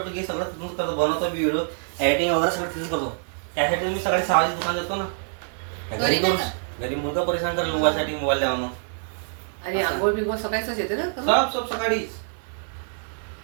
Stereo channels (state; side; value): silent; left; digital silence